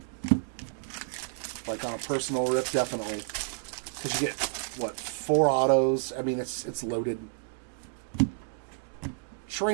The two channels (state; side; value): silent; left; digital silence